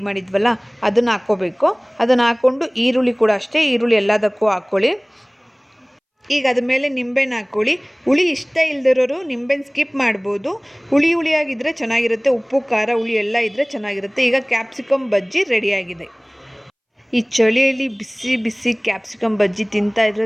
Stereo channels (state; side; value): identical; both; correlation 1.00